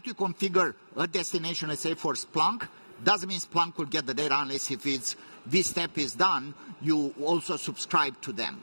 you configure a destination, let's say for Splunk, doesn't mean Splunk will get the data unless if this step is done, you also subscribe to them.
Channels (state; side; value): inverted; both; correlation -1.00